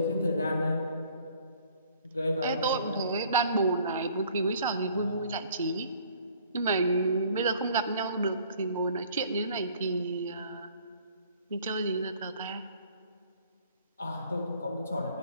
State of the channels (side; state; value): both; inverted; correlation -0.56